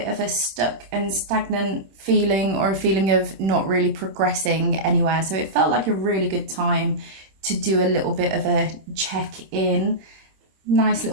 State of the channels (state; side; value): late; left; 26 ms